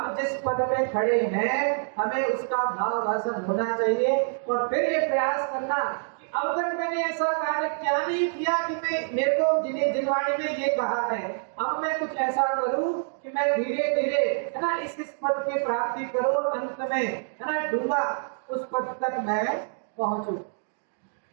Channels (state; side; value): silent; left; digital silence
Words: जिस पद पे खड़े हैं हमें उसका भाव भाषण होना चाहिए, और फिर ये प्रयास करना कि अब तक मैंने ऐसा कार्य क्या नहीं किया कि मैं मेरे को जिन्हें जिनवाणी में ये कहा है, अब मैं कुछ ऐसा करूं कि मैं धीरे धीरे है ना इस पद की प्राप्ति करूं और अंत में है ना डूबा उस पद तक मैं पहुंचूं।